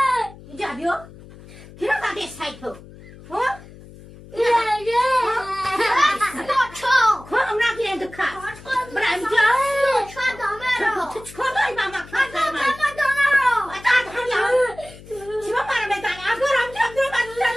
اینجا بیا که را زده سایتو کنم نگیرند کار برای اینجا تو چکار داری با ما کار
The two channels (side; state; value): left; noise; hum, 19 dB below the sound